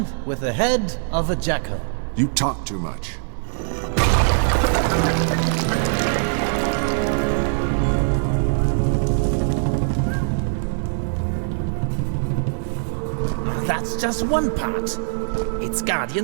with the head of a jackal. You talk too much. That's just one part. Its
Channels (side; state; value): left; silent; 63 dB below the other